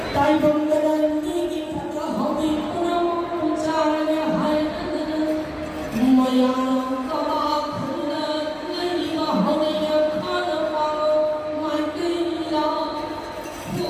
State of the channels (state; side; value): identical; both; correlation 1.00